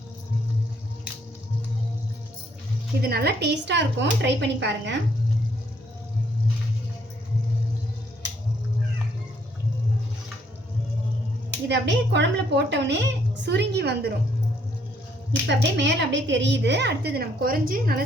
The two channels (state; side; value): normal; both; correlation 0.68